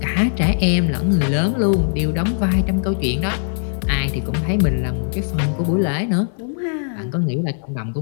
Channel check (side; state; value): right; silent; 59 dB below the other